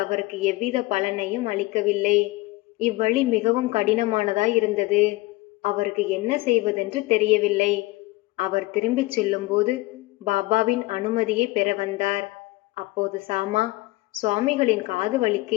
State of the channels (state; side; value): quieter; right; 20.9 dB